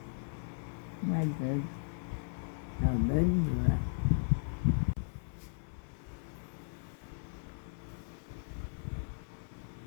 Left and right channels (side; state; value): right; silent; 54 dB below the other